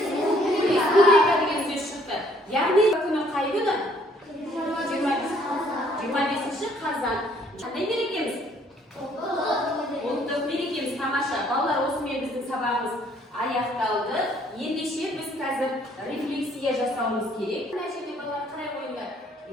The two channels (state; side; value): normal; both; correlation 0.63